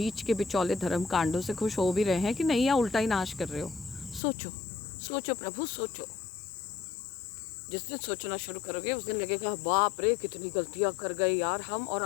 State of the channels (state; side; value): drops out; right; at 4.2 s